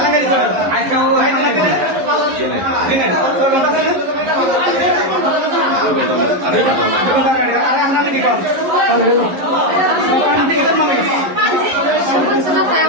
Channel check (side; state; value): left; late; 11 ms